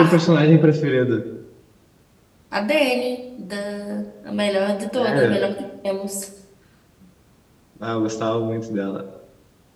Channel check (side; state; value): both; identical; correlation 1.00